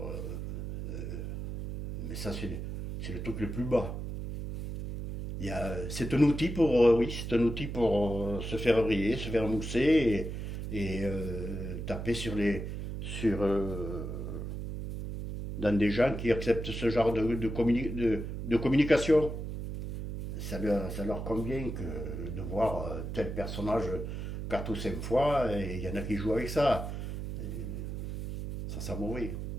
mais ça, c'est le truc le plus bas. C'est un outil pour, oui, c'est un outil pour se faire briller, se faire mousser taper dans des gens qui acceptent ce genre de communication. Ça leur convient de voir tel personnage 4 ou 5 fois, et il y en a qui jouent avec ça. Ça sent mauvais.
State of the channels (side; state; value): right; noise; hum, 5 dB below the sound